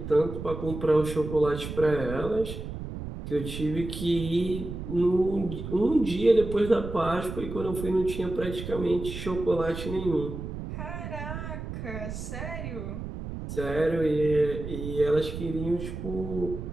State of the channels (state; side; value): noise; right; rumble, 7 dB below the sound